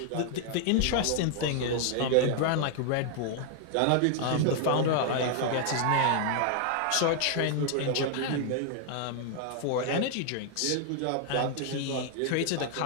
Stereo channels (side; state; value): both; different; correlation 0.00